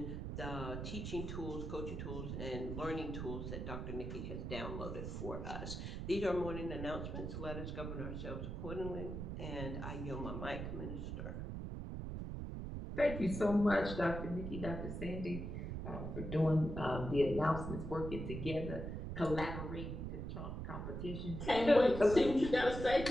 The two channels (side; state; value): right; noise; rumble, 5 dB below the sound